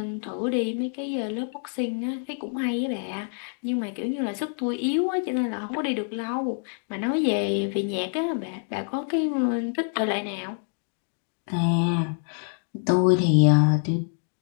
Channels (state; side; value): silent; right; 61 dB below the other